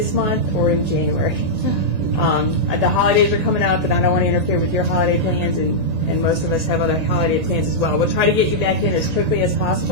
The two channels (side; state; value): left; late; 1.8 ms